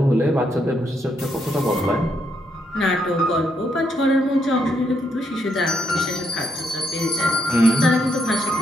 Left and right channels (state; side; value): normal; both; correlation 0.76